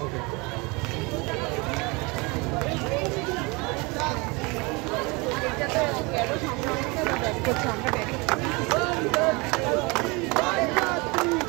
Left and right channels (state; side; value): quieter; left; 26.9 dB